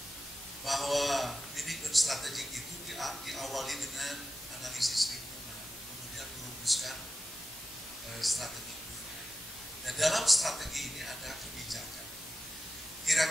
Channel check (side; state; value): both; normal; correlation 0.92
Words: bahwa manajemen strategik itu diawali dengan analisis lingkungan, kemudian merumuskan strategi. Dan dalam strategi ini ada kebijakan.